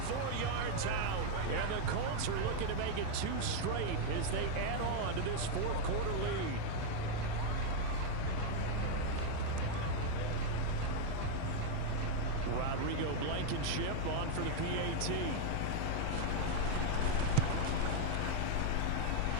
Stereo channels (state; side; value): different; both; correlation 0.00